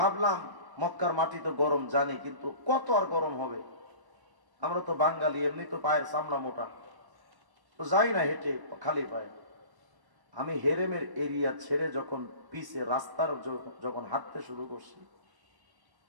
মক্কার মাটি তো গরম জানি, কিন্তু কত আর গরম হবে, আমরা তো বাঙালি, এমনি তো পায়ের চামড়া মোটা, তো যাই না হেঁটে খালি পায়ে। আমি হেরেমের এরিয়া ছেড়ে যখন পিছে রাস্তার যখন হাঁটতে শুরু করছি,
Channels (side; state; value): left; late; 1.0 ms